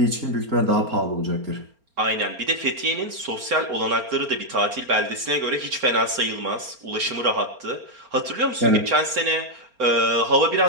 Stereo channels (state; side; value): late; left; 4.3 ms